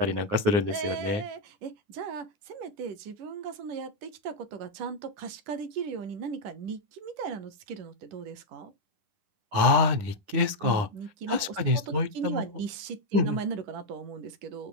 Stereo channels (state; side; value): late; left; 9.7 ms